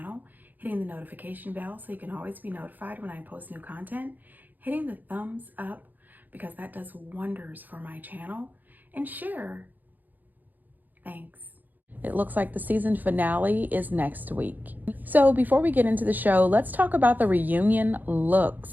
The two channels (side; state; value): left; late; 0.085 ms